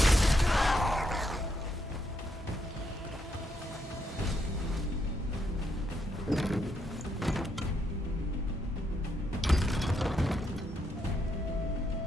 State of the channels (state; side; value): normal; both; correlation 0.78